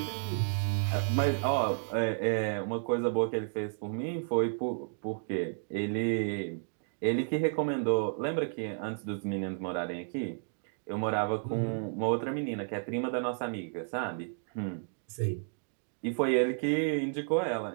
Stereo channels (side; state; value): left; silent; digital silence